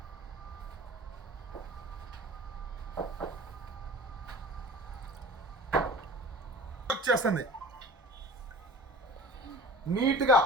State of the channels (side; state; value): both; normal; correlation 0.41